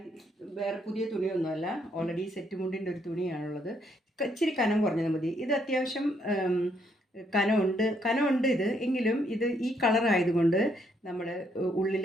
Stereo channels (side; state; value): both; normal; correlation 0.72